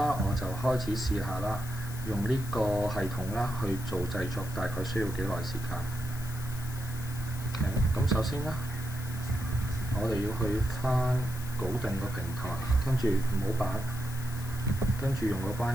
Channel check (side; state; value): left; noise; hiss, 14 dB below the sound